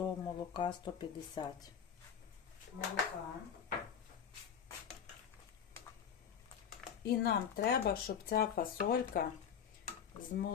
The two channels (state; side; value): quieter; right; 8.0 dB